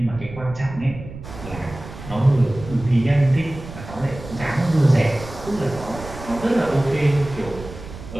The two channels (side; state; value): right; noise; rumble, 13 dB below the sound